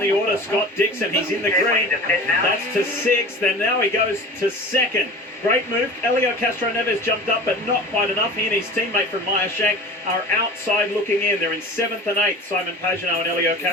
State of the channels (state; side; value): normal; both; correlation 0.37